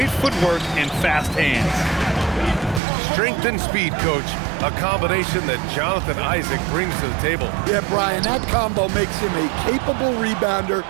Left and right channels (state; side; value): drops out; left; at 2.8 s